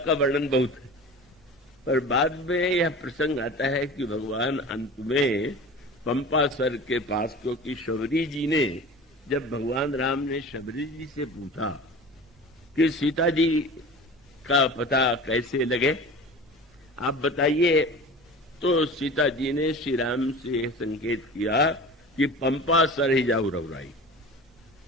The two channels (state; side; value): normal; both; correlation 0.37